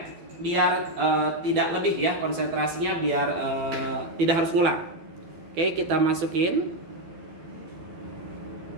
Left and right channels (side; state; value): left; late; 12 ms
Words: biar tidak lebih ya konsentrasinya, biar tidak harus ngulang. Oke, kita masukin